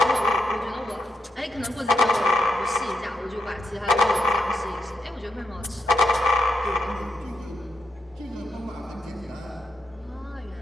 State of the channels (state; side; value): normal; both; correlation 0.84